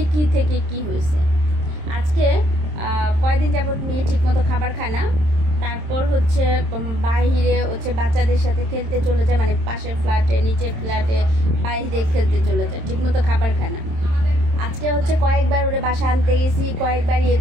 কি থেকে কি হয়েছে। আজকে কয়েকদিন যাবত মেয়ে ঠিকমতো খাবার খায় না, তারপর হচ্ছে বাহিরে হচ্ছে বাচ্চাদের সাথে খেলতে চলে যায়, মানে পাশের ফ্ল্যাটে নিচের ফ্ল্যাটে বাইরে খেলতে চলে যায়, ঠিকমতো খাবার খায় না। আজকে হচ্ছে কয়েকবার ওরে বাসা আনতে গেছি, কয়েকবার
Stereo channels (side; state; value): left; late; 26 ms